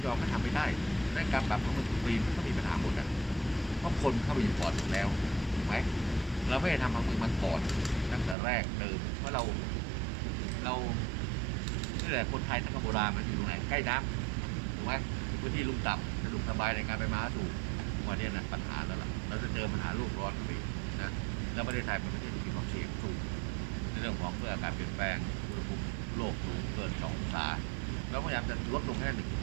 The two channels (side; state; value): left; drops out; at 8.3 s